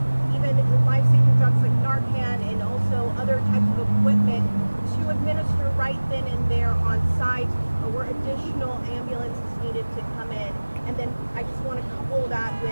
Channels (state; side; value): inverted; both; correlation -1.00